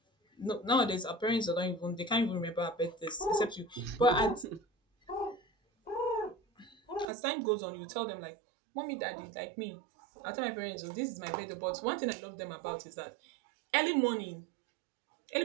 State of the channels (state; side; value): drops out; left; at 7.1 s